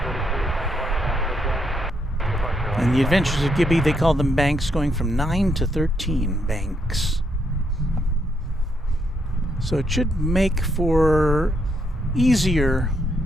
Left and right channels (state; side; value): normal; both; correlation 0.76